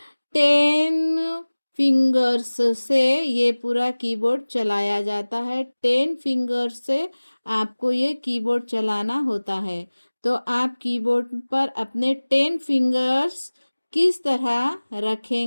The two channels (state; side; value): inverted; both; correlation -1.00